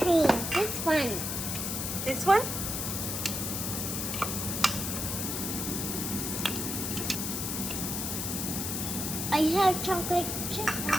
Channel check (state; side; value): noise; left; hiss, 2 dB below the sound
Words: cream. This one. This one? I have chocolate chip